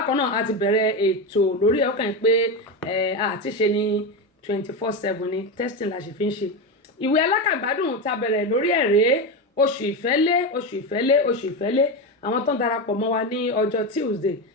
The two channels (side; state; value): both; normal; correlation 0.15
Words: náà a ti bẹ̀rẹ̀ ètò lórí ẹ̀, ó kàn pé àti ṣe ní 24/7 ní testing la ṣe fi ń ṣe. Ìwé alákàgbádùn ta bẹ̀rẹ̀ lórí ẹ̀rẹ́ oṣù ìfẹ́lé. Àwọn tó ń darapọ̀ mọ́ wa ní ọjọ́ Tuesday